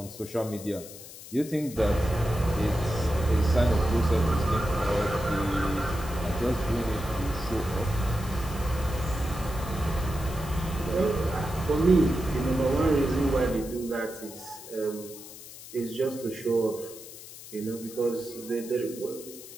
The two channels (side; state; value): left; noise; hiss, 15 dB below the sound